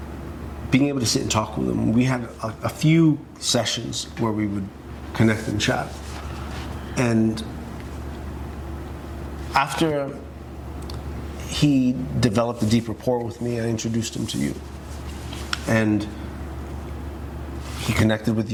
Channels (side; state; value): both; identical; correlation 1.00